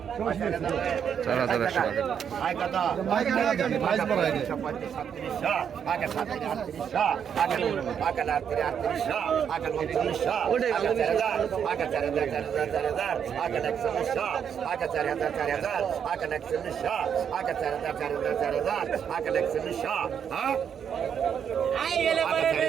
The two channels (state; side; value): quieter; left; 7.9 dB